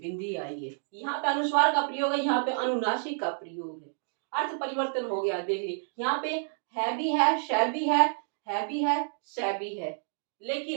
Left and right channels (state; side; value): silent; left; digital silence